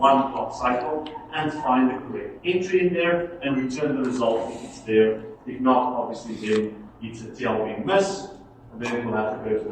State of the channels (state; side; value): identical; both; correlation 1.00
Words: clock cycle and find the correct entry in there and return the result if it's there. If not, obviously then it's a TLB miss, and then it will have to go to